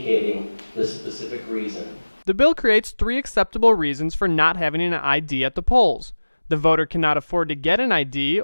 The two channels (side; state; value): both; inverted; correlation -1.00